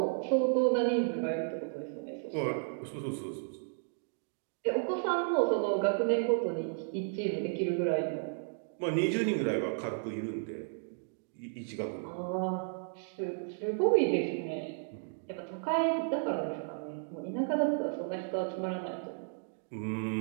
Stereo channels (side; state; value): left; silent; digital silence